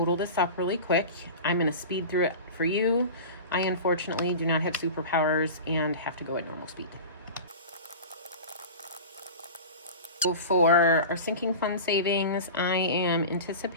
this up really quick. I'm going to speed through it for you. I unfortunately do not have superpowers and have to go at normal speed. So for our sinking fund savings, I am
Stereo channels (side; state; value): both; inverted; correlation -0.32